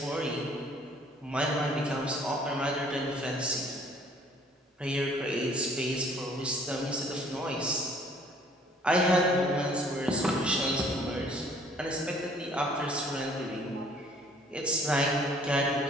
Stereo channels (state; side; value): normal; both; correlation 0.57